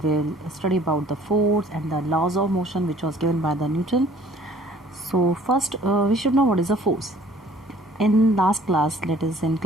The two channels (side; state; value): both; normal; correlation 0.54